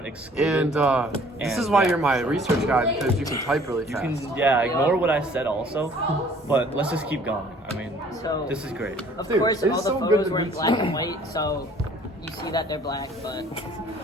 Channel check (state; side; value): normal; both; correlation 0.55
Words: excluded. And this is why you're my research guy, because you can type really fast. Ignore what I said also, but let's just keep going. I mean, So this is great. Of Dude, course, it's all the so good photos to were in meet black you. and white, so you see that they're black, but